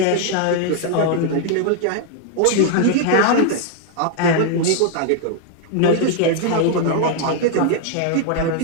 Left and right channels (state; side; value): different; both; correlation 0.00